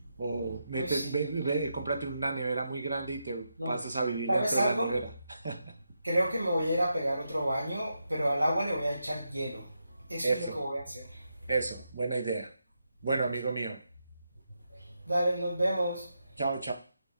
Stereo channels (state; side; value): inverted; both; correlation -0.84